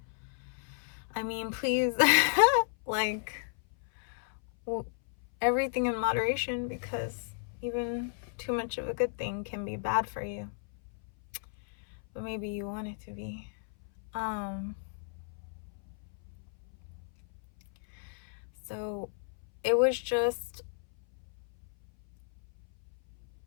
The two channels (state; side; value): silent; right; 56 dB below the other